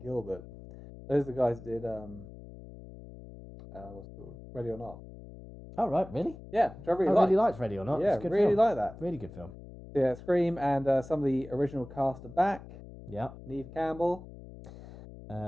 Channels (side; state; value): left; noise; hum, 16 dB below the sound